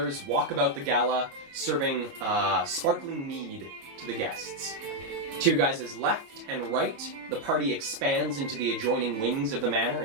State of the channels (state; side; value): late; left; 22 ms